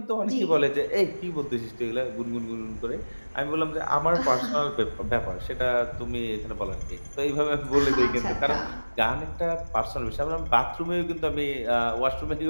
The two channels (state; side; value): inverted; both; correlation -1.00